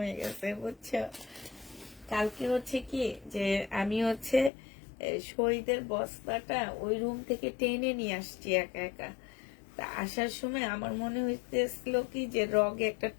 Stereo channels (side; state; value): right; drops out; at 4.5 s